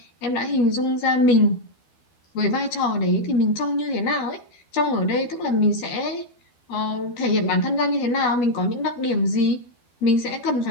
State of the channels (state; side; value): late; right; 12 ms